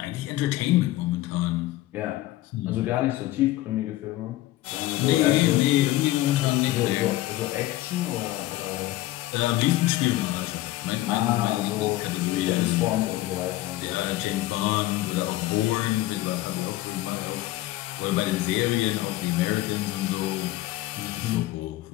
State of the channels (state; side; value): quieter; right; 16.3 dB